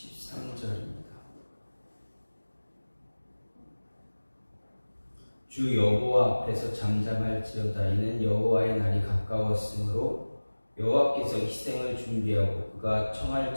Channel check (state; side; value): inverted; both; correlation -1.00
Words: 주 여호와 앞에서 잠잠할지어다. 이는 여호와의 날이 가까웠으므로 여호와께서 희생을 준비하고 그가 청할